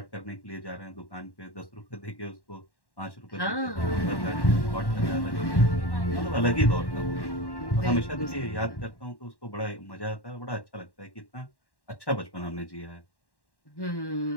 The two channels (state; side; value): late; right; 1.1 ms